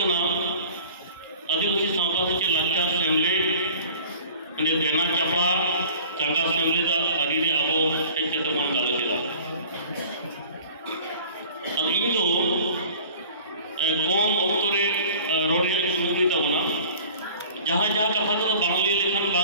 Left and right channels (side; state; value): both; inverted; correlation -0.46